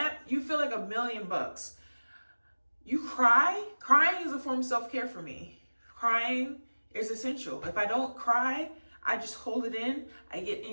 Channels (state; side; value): inverted; both; correlation -1.00